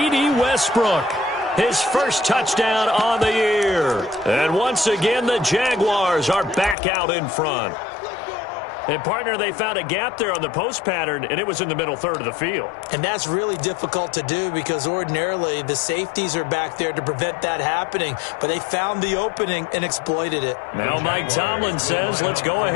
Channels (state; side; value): drops out; right; at 6.8 s